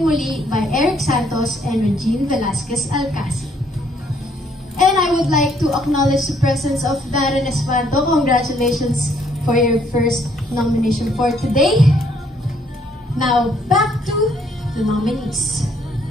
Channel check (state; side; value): normal; both; correlation 0.67